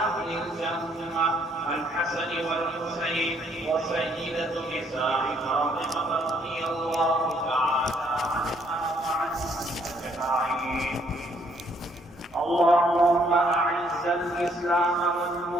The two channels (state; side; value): normal; both; correlation 0.67